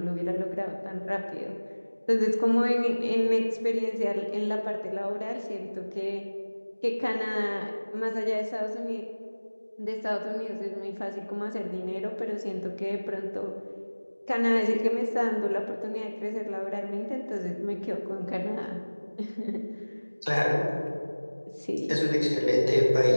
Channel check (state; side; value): inverted; both; correlation -1.00